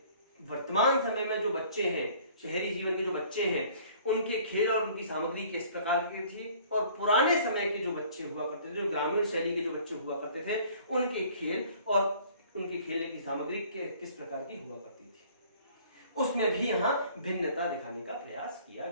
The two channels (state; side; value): inverted; both; correlation -0.53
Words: वर्तमान समय में जो बच्चे हैं, शहरी जीवन के जो बच्चे हैं, उनके खेल और उनकी सामग्री किस प्रकार की थी और पुराने समय के जो बच्चे हुआ करते थे, जो ग्रामीण शैली के जो बच्चे हुआ करते थे, उनके खेल और उनके खेलने की सामग्री किस प्रकार की हुआ करती थी, उसमें भी यहां भिन्नता दिखाने का प्रयास किया